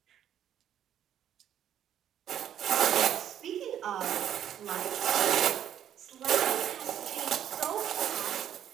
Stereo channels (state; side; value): quieter; left; 10.3 dB